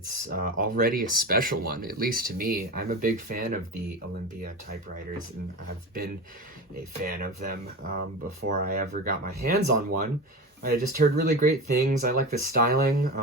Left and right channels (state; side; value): normal; both; correlation 0.26